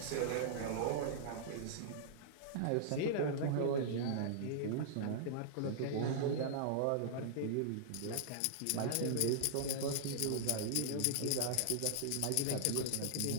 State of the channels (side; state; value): both; different; correlation -0.01